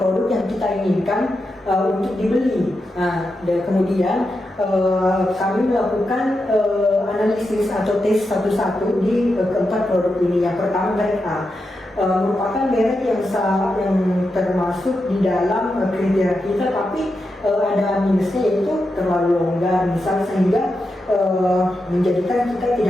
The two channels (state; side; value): normal; both; correlation 0.87